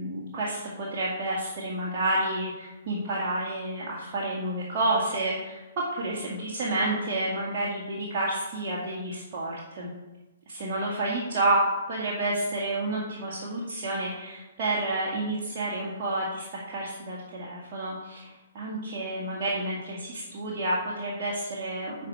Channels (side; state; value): both; inverted; correlation -0.55